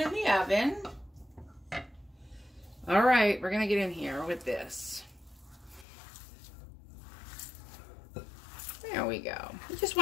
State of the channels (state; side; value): drops out; right; at 5.9 s